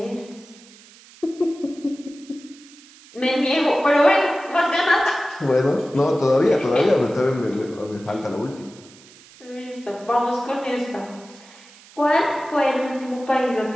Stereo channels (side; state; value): right; noise; hiss, 23 dB below the sound